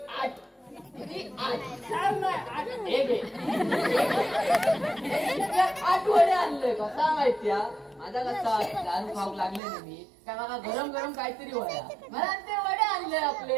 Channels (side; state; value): left; drops out; at 9.6 s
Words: 8. किती? 8. एक 8 वडे आणले. कसा माहितीया माझा कसा दारू खाऊ लागले ना मी काय मला गरम गरम काहीतरी वड्या मला ते वडे आणले